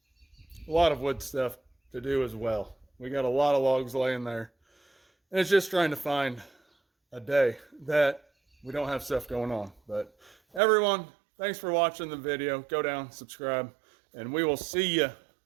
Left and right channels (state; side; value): drops out; left; at 10.6 s